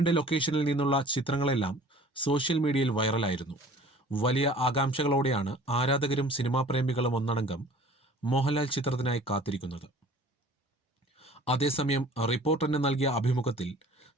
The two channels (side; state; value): both; normal; correlation 0.48